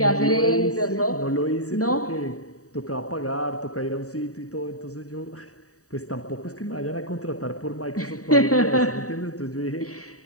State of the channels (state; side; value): late; right; 0.66 ms